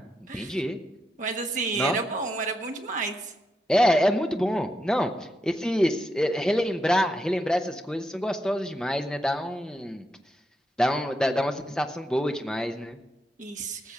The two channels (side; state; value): both; normal; correlation 0.82